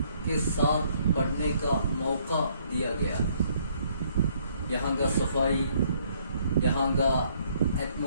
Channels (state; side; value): inverted; both; correlation -0.66